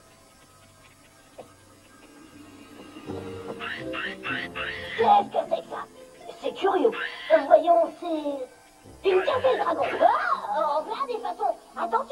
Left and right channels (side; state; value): both; identical; correlation 1.00